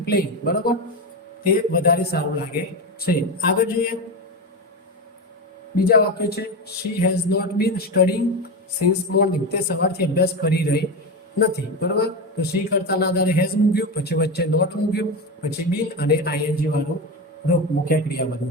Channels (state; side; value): normal; both; correlation 0.18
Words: પ્લેઇંગ, બરોબર, તે વધારે સારું લાગે છે. આગળ જોઈએ બીજા વાક્ય છે she has not been studying since morning, તે સવારથી અભ્યાસ કરી રહી નથી, બરોબર. તો શી કર્તાના આધારે હેઝ મૂક્યું, પછી વચ્ચે નોટ મૂક્યું, પછી બીન અને આઈએનજી વાળું રૂપ મુખ્ય